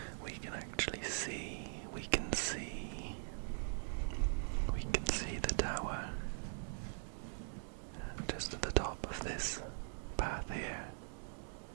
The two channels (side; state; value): left; silent; digital silence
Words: we can actually see, we can see the tower just at the top of this path here.